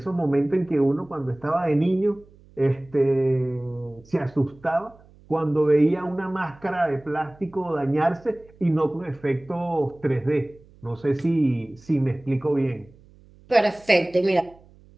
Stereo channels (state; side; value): noise; right; hum, 26 dB below the sound